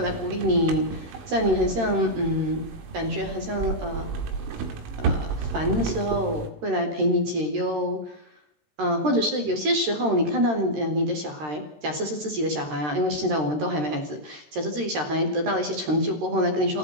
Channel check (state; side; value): late; left; 13 ms